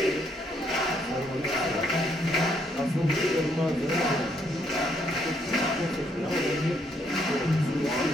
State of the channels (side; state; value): both; normal; correlation 0.72